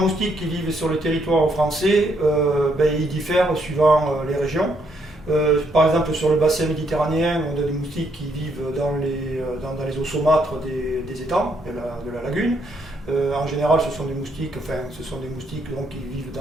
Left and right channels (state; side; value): normal; both; correlation 0.73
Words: qui vivent sur le territoire français, ils diffèrent suivant les régions. Par exemple, sur le bassin méditerranéen, on a des moustiques qui vivent dans les eaux saumâtres des étangs, de la lagune. En général, ce sont des moustiques donc, qui vivent